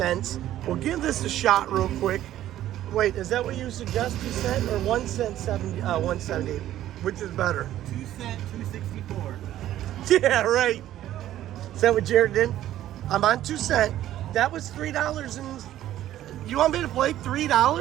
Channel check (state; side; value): quieter; left; 13.0 dB